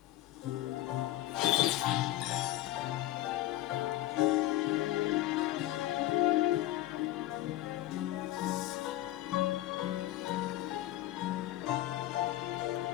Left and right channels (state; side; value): quieter; right; 15.0 dB